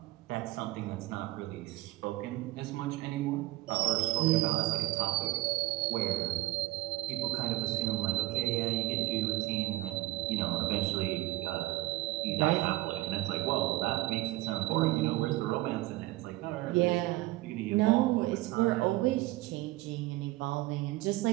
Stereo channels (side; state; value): left; quieter; 18.0 dB